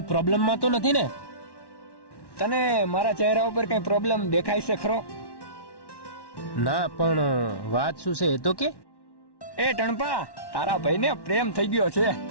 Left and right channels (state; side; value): late; right; 1.1 ms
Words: પ્રોબ્લેમમાં તો નથી ને? તને મારા ચહેરા ઉપર કઈ પ્રોબ્લેમ દેખાય છે ખરો? ના, પણ વાત શું છે એ તો કે. એ ટણપા, તારા ભાઈને પ્રેમ થઈ ગયો છે.